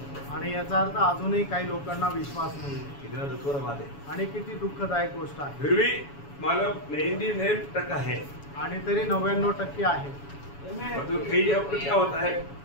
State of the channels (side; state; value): right; late; 7.1 ms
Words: आणि याचा अर्थ अजूनही काही लोकांना विश्वास नाही। कितना दुखद बात है आणि किती दुःखदायक गोष्ट आहे। फिर भी मतलब 99% है आणि तरी 99% आहे। तो कई जगह पर क्या होता है,